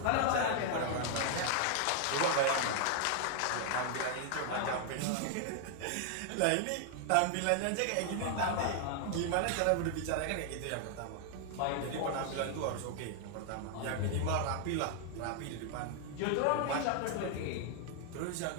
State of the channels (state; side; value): different; both; correlation 0.00